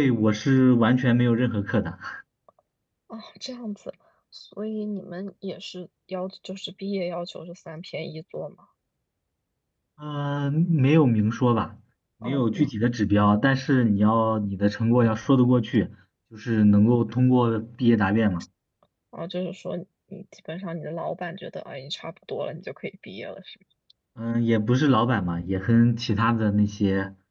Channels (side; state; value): both; identical; correlation 1.00